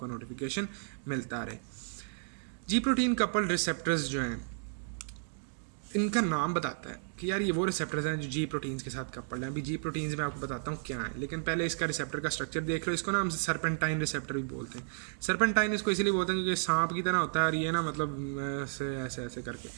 नोटिफिकेशन मिलता रहे। जी प्रोटीन कपल्ड रिसेप्टर्स जो हैं इनका नाम बताता है कि यार ये वो रिसेप्टर्स हैं जो जी प्रोटीन्स के साथ कपल्ड हैं। अभी जी प्रोटीन्स में आपको बताता हूँ क्या है, लेकिन पहले इसका रिसेप्टर का स्ट्रक्चर देख लो। इसको ना हम सर्पेंटाइन रिसेप्टर भी बोलते हैं। सर्पेंटाइन इसको इसलिए बोलते हैं क्योंकि सांप की तरह होता है और ये ना मतलब ऐसे ऐसे ऐसे करके,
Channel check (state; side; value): silent; left; digital silence